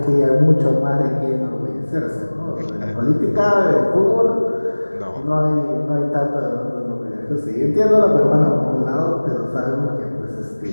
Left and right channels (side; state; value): both; inverted; correlation -1.00